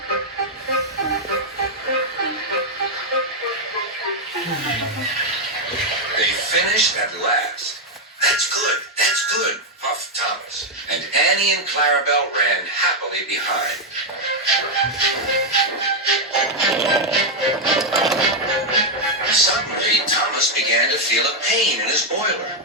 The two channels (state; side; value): normal; both; correlation 0.01